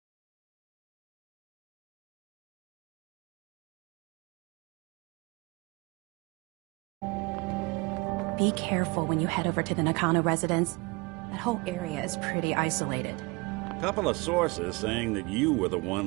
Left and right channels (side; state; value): left; quieter; 26.8 dB